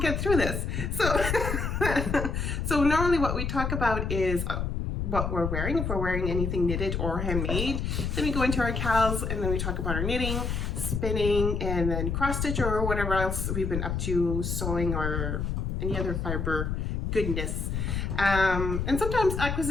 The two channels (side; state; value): left; noise; rumble, 1 dB below the sound